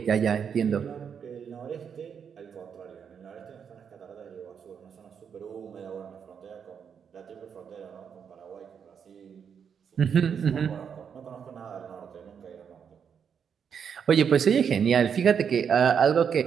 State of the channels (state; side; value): quieter; left; 7.3 dB